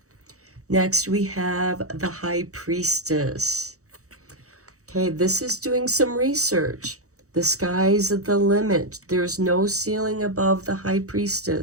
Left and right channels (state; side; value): late; left; 0.65 ms